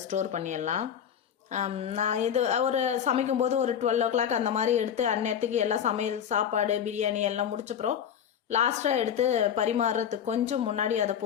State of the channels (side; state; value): right; quieter; 8.7 dB